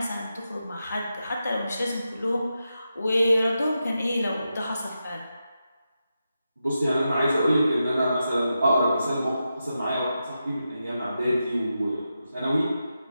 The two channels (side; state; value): both; inverted; correlation -0.88